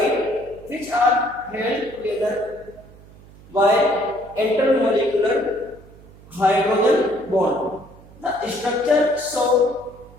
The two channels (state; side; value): noise; right; hum, 22 dB below the sound